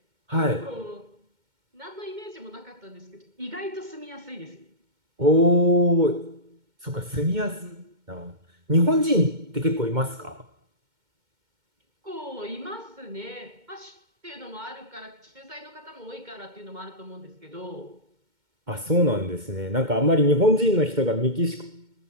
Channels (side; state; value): left; late; 2.1 ms